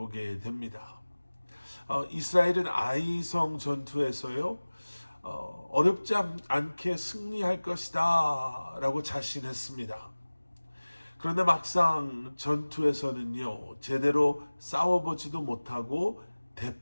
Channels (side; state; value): both; inverted; correlation -1.00